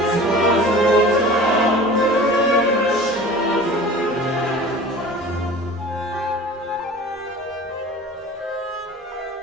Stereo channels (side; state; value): both; normal; correlation 0.41